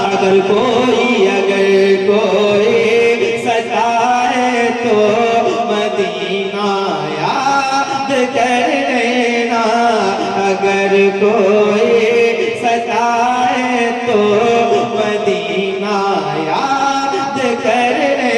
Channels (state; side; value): identical; both; correlation 1.00